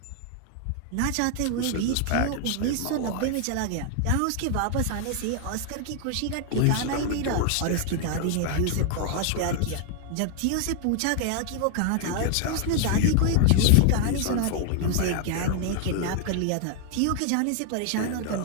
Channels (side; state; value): both; different; correlation 0.00